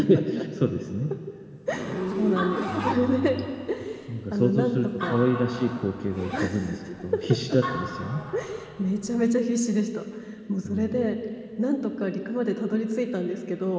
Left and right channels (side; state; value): both; identical; correlation 1.00